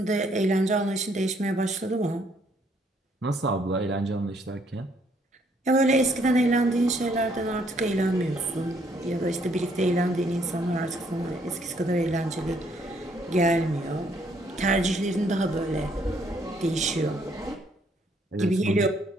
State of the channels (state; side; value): normal; both; correlation 0.68